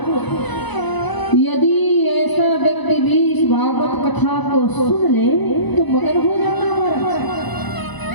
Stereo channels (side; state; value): right; late; 1.0 ms